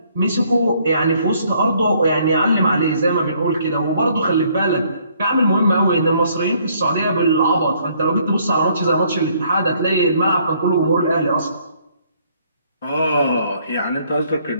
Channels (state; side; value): inverted; both; correlation -0.65